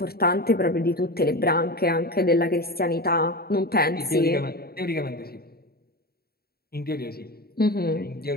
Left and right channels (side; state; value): right; late; 0.45 ms